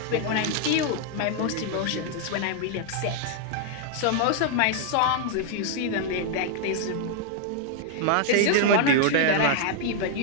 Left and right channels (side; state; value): both; different; correlation 0.00